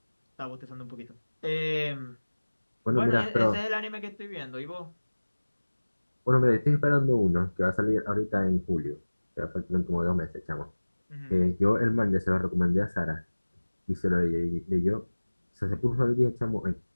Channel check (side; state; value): both; inverted; correlation -1.00